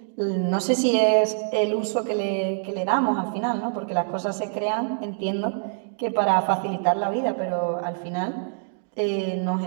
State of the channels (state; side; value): silent; left; digital silence